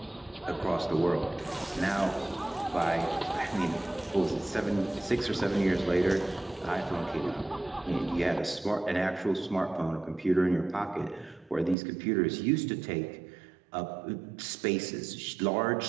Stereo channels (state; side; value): drops out; left; at 11.8 s